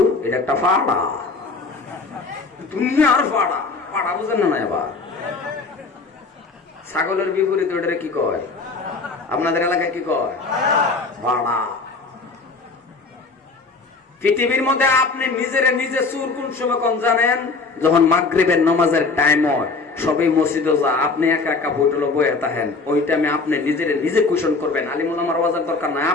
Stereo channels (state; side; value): quieter; right; 4.0 dB